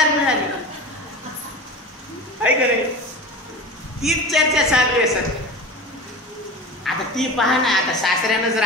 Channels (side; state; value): both; normal; correlation 0.32